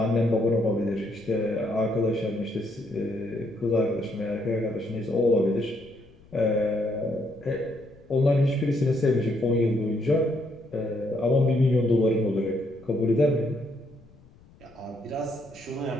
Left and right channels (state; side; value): noise; left; rumble, 26 dB below the sound